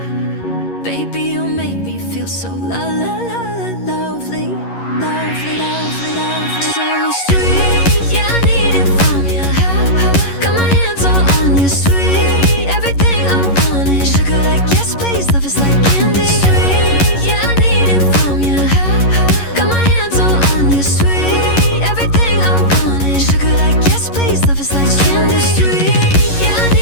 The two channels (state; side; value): late; right; 11 ms